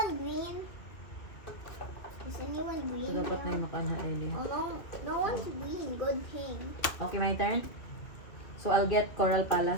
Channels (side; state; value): right; late; 2.4 ms